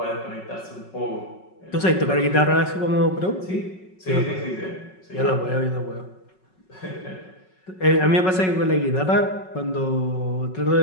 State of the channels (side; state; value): right; late; 5.4 ms